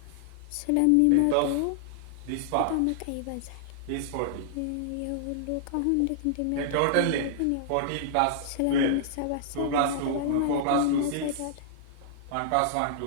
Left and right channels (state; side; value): different; both; correlation -0.01